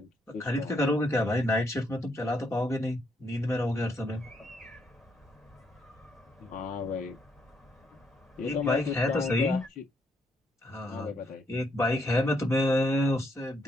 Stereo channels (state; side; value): normal; both; correlation 0.75